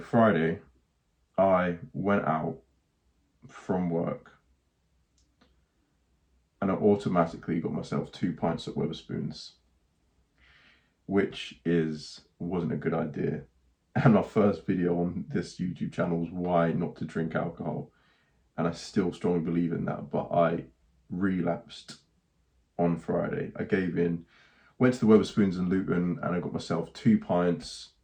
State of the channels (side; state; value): both; identical; correlation 1.00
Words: I went out from work and I automatically got myself 2 pints at Wetherspoons, which wasn't a good idea. And my first video on this YouTube channel was why not to drink alcohol. And I still strongly believe in that, but I relapsed on Friday. I gave in, went to the Wetherspoons in Luton, and I got myself 2 pints.